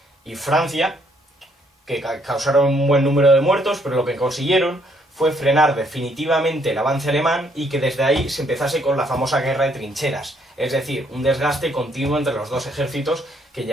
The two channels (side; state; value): both; normal; correlation 0.69